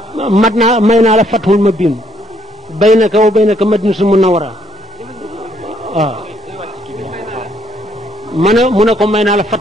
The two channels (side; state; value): both; normal; correlation 0.68